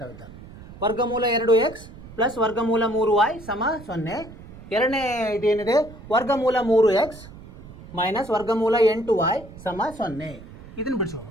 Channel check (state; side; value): noise; right; rumble, 17 dB below the sound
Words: ವರ್ಗಮೂಲ 2x ಪ್ಲಸ್ ವರ್ಗಮೂಲ 3y ಸಮ 0. ಎರಡನೇ ಇದೇನಿದೆ, ವರ್ಗಮೂಲ 3x ಮೈನಸ್ ವರ್ಗಮೂಲ 8y ಸಮ 0. ಇದನ್ನು ಬಿಡಿಸೋಣ.